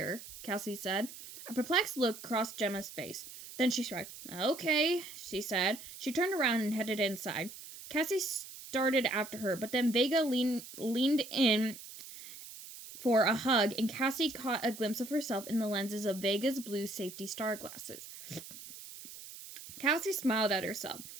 Cassie said. A perplexed look crossed Gemma's face. Then she shrugged. Okay, she said. She turned around and headed inside. Cassie started after her, but then Vega leaned in for a hug, and Cassie caught a glimpse of herself in the lenses of Vega's blue safety star glasses. Cassie smiled at herself.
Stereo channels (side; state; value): right; noise; hiss, 14 dB below the sound